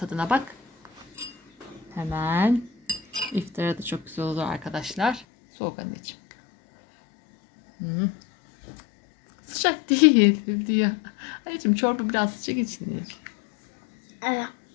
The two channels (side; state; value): right; drops out; at 5.2 s